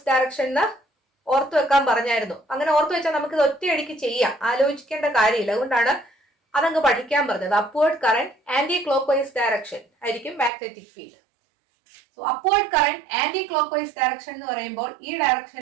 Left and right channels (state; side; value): drops out; left; at 10.5 s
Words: ഡയറക്ഷൻ ഓർത്തു വെക്കാൻ പറഞ്ഞായിരുന്നു. അങ്ങനെ ഓർത്തു വെച്ചാൽ നമുക്ക് ഇത് ഒറ്റയടിക്ക് ചെയ്യാം, ആലോചിക്കേണ്ട കാര്യമില്ല. അതുകൊണ്ടാണ് അതങ്ങ് പഠിക്കാൻ പറഞ്ഞത്. Upward current anti clock vice direction ആയിരിക്കും magnetic field. So upward current anti clock vice direction എന്ന് പറയുമ്പോൾ ഈ